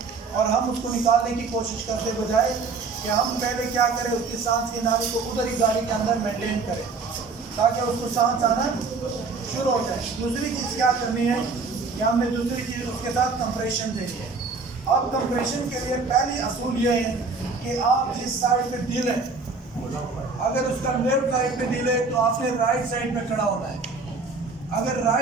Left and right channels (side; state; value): left; quieter; 4.3 dB